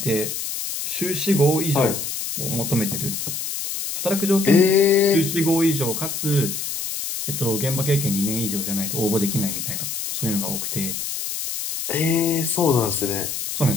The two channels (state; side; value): noise; left; hiss, 4 dB below the sound